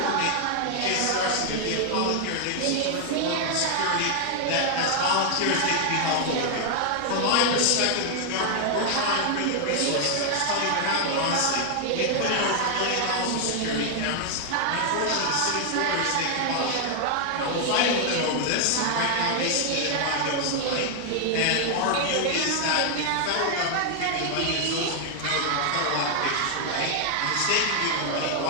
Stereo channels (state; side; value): different; both; correlation 0.00